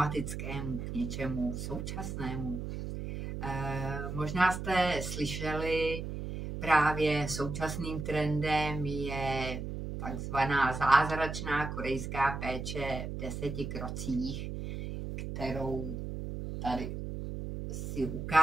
k něčemu současnému. Možná jste slyšeli, právě současným trendem je takzvaná zázračná korejská péče v 10 krocích, kterou tady si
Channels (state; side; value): noise; right; hum, 5 dB below the sound